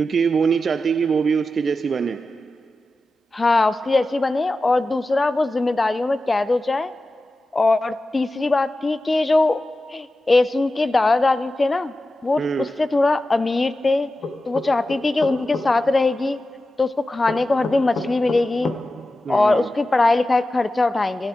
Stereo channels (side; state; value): both; normal; correlation 0.93